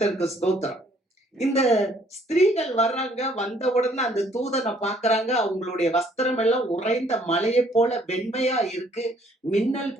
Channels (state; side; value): normal; both; correlation 0.62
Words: ஸ்தோத்திரம். இந்த ஸ்திரீகள் வர்றாங்க, வந்த உடனே அந்த தூதனை பாக்குறாங்க. அவங்களுடைய வஸ்திரம் எல்லாம் உறைந்த மலையை போல வெண்மையா இருக்கு, மின்னல்